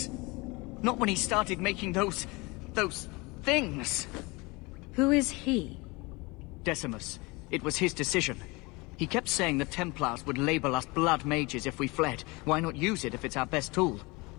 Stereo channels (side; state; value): right; quieter; 25.3 dB